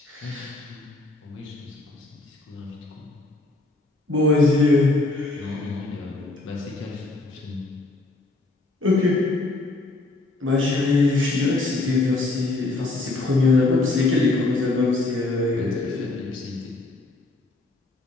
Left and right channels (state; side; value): quieter; right; 3.0 dB